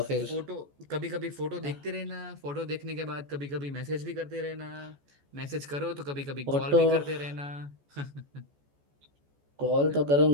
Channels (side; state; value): left; late; 14 ms